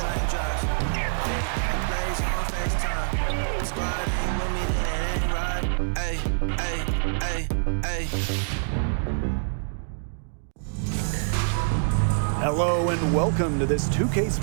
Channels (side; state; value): left; silent; digital silence